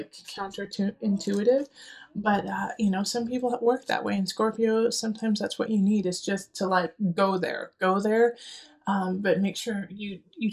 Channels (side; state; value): both; identical; correlation 1.00